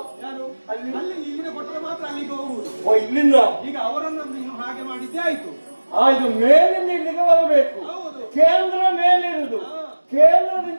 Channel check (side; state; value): both; inverted; correlation -1.00